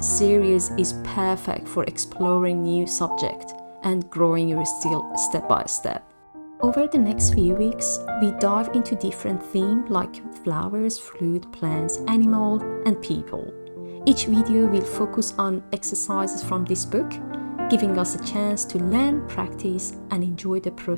is perfect for exploring new subjects and growing your skill step by step. Over the next few weeks, we dive into different themes like flowers, fruit, plants, animal, and people. Each video will focus on exercises from this book, giving us a chance to learn, practice, and enjoy the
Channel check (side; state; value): both; inverted; correlation -1.00